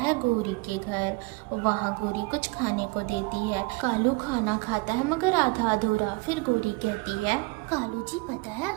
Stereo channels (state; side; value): quieter; left; 25.8 dB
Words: गोरी के घर। वहाँ गोरी कुछ खाने को देती है। कालू खाना खाता है मगर आधा अधूरा। फिर गोरी कहती है, कालू जी, पता है